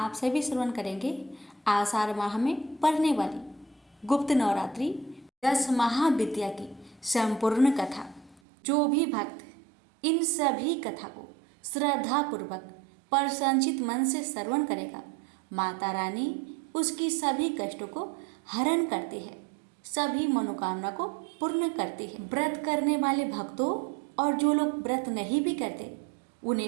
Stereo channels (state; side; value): drops out; left; at 8.4 s